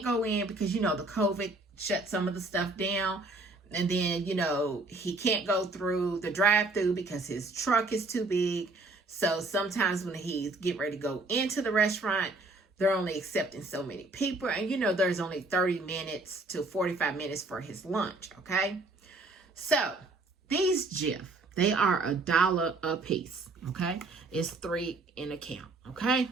go in because, you know, the COVID shut some of the stuff down. And then, you know, he can't go through the drive-through because his truck is too big. So sometimes when he's getting ready to go into the restaurant, they're only accepting so many people. And, you know, there's only 30 minutes to 45 minutes for his lunch, okay? So, these GIF, They are $1 a piece, okay? It's 3 in a count, okay?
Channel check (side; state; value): left; quieter; 3.2 dB